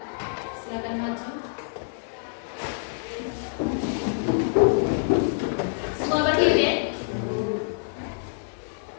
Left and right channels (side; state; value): right; silent; digital silence